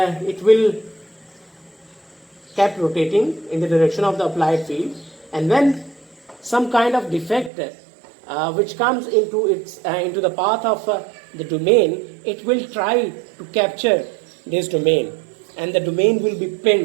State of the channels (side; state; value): left; drops out; at 7.5 s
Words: it will keep rotating in the direction of the applied field, and when some kind of defect which comes into the path of the domain, it will try to capture this domain, and the domain will be